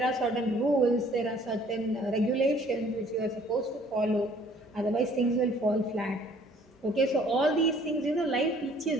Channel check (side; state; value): both; normal; correlation 0.57